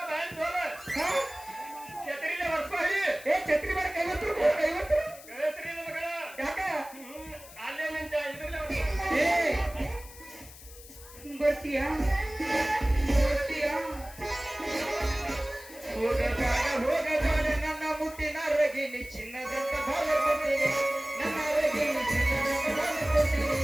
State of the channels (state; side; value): noise; left; hiss, 18 dB below the sound